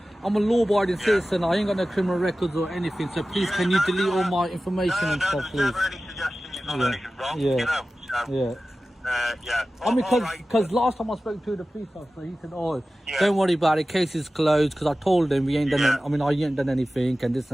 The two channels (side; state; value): both; normal; correlation 0.96